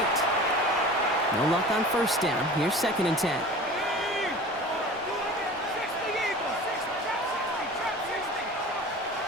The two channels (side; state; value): both; normal; correlation 0.39